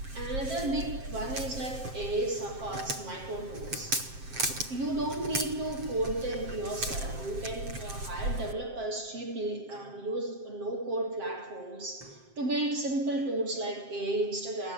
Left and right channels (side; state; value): left; late; 7.6 ms